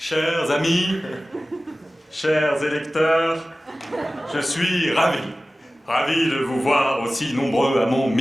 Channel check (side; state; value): both; normal; correlation 0.96